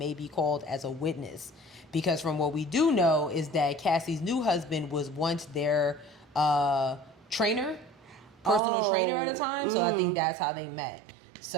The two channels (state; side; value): drops out; left; at 8.6 s